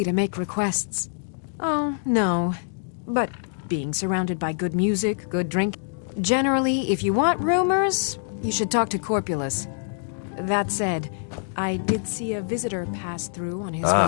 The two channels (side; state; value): right; silent; digital silence